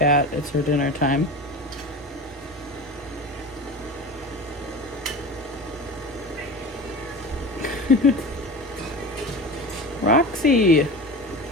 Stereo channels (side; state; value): both; normal; correlation 0.31